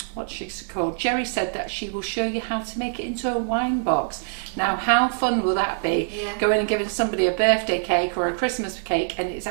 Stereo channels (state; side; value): silent; left; digital silence